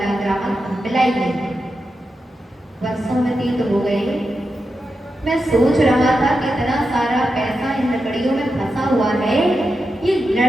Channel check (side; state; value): both; normal; correlation 0.88